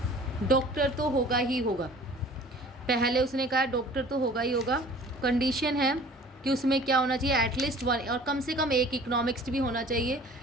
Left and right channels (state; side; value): normal; both; correlation 0.47